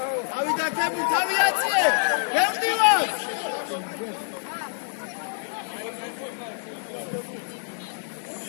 ავიდა კები თავიაციე გემდივარ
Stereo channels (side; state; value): right; silent; 61 dB below the other